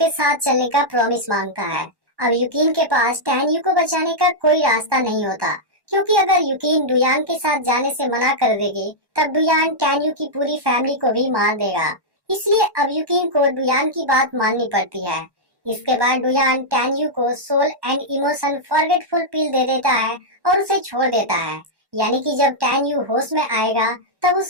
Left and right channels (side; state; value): left; late; 1.1 ms